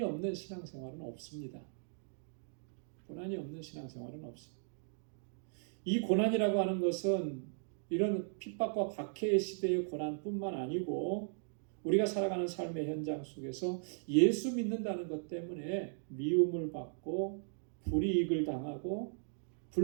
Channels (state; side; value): silent; left; digital silence